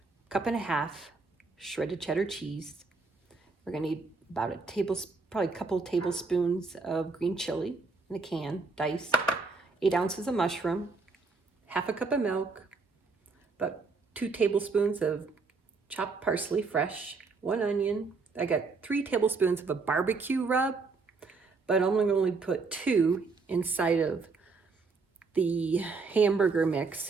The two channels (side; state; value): left; quieter; 4.2 dB